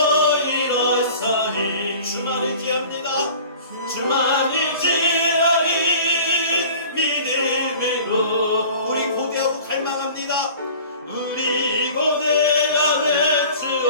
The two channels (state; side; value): inverted; both; correlation -0.44